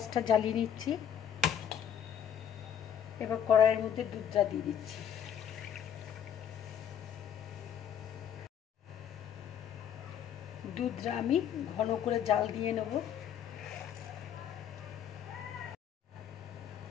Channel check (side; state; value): right; quieter; 9.0 dB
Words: জ্বালিয়ে নিচ্ছি। এবার কড়াইয়ের মধ্যে দুধটা দিয়ে দিচ্ছি। দুধটা আমি ঘন করে জাল দিয়ে নেব।